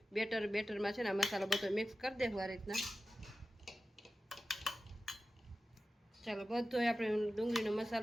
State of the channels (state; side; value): normal; both; correlation 0.94